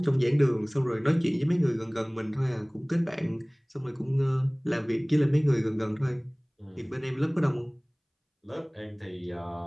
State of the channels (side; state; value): both; identical; correlation 1.00